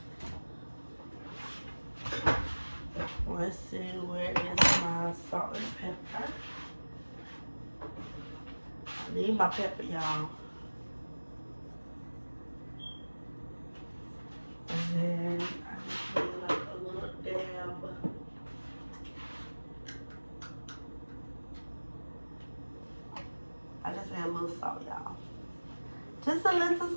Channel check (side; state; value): both; inverted; correlation -1.00